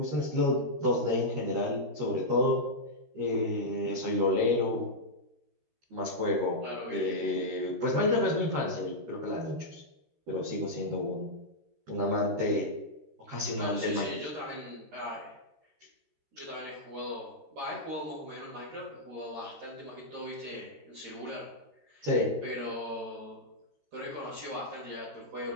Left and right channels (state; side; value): late; left; 13 ms